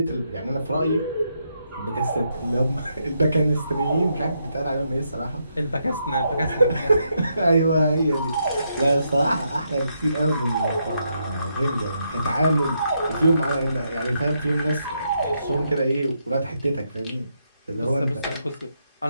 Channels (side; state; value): both; inverted; correlation -0.79